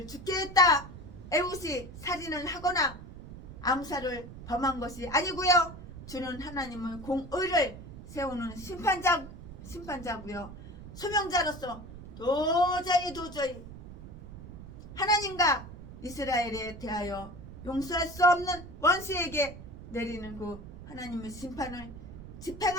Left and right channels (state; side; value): noise; right; rumble, 14 dB below the sound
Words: 죽게 했다. 에훗이 살인을 하거나 암살을 범한 것이 아니고요. 주는 하나님의 공의를 세우는 심판자고요. 소명자로서 도저히 하나님과 이스라엘에 대하여 용서할 수 없는 원수에게 내리는 그 하나님의 심판을